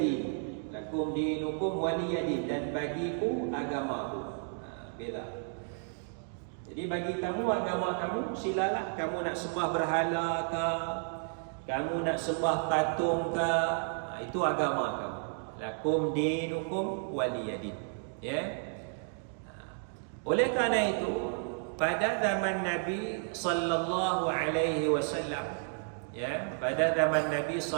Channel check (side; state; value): left; silent; 56 dB below the other